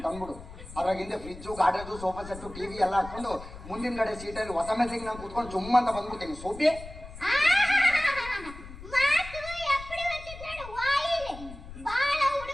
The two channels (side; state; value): left; noise; rumble, 14 dB below the sound